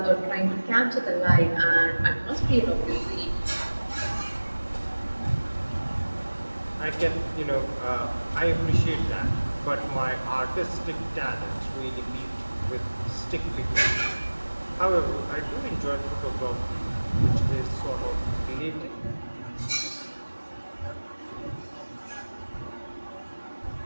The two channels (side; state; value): both; inverted; correlation -1.00